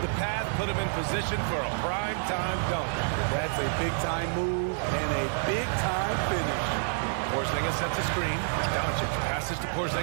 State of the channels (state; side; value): silent; left; digital silence